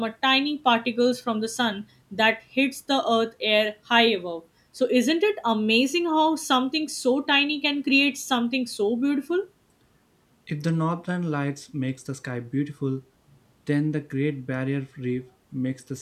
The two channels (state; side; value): identical; both; correlation 1.00